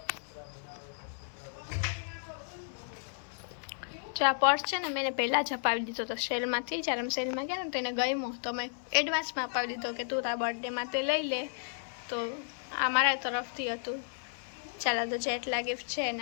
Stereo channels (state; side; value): silent; right; digital silence